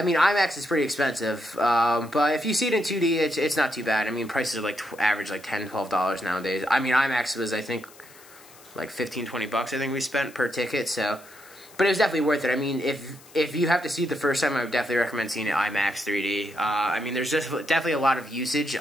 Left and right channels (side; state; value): left; noise; hiss, 23 dB below the sound